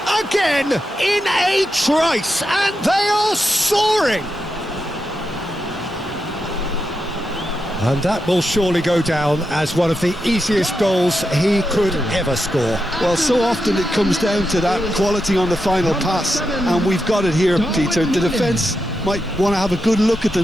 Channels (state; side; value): normal; both; correlation 0.87